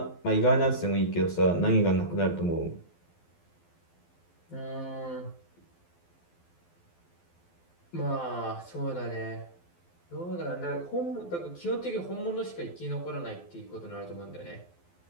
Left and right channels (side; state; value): right; late; 12 ms